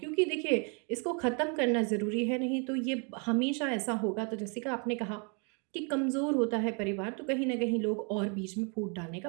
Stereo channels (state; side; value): quieter; left; 35.9 dB